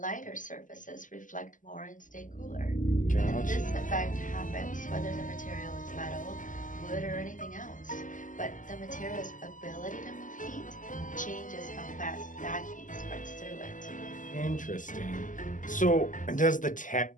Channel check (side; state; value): right; late; 0.38 ms